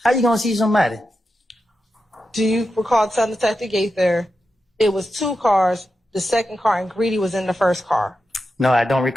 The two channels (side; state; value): both; normal; correlation 0.89